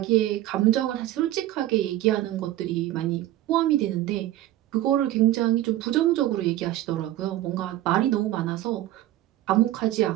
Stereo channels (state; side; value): quieter; left; 14.6 dB